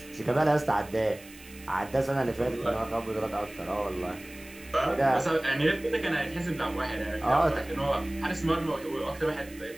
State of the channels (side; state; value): right; noise; hiss, 20 dB below the sound